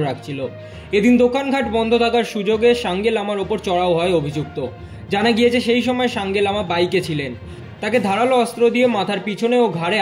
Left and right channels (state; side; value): identical; both; correlation 1.00